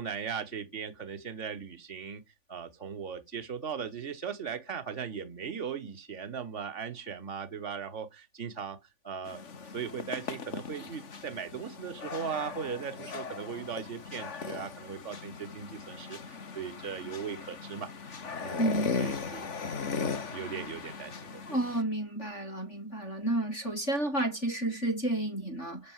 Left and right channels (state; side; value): late; right; 3.5 ms